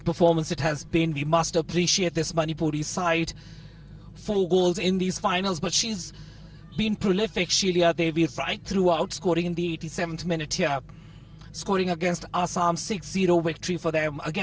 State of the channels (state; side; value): identical; both; correlation 1.00